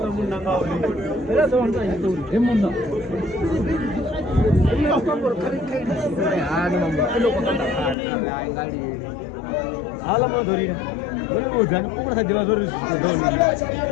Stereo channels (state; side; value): drops out; right; at 8.0 s